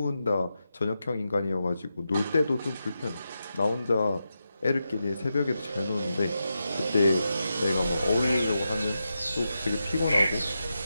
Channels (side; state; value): both; inverted; correlation -0.88